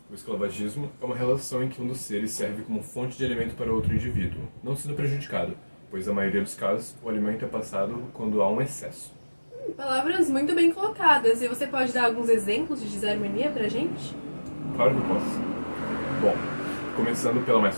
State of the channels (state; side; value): inverted; both; correlation -1.00